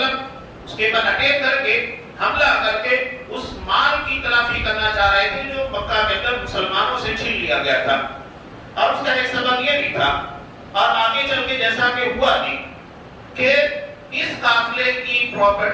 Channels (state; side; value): identical; both; correlation 1.00